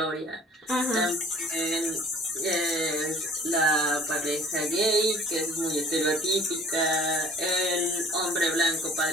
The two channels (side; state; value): both; normal; correlation 0.52